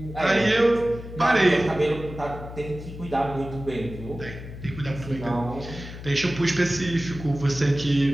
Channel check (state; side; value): noise; left; hum, 12 dB below the sound